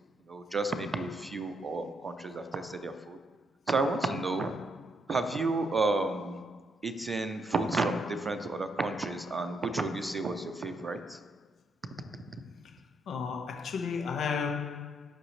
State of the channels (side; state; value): both; normal; correlation 0.76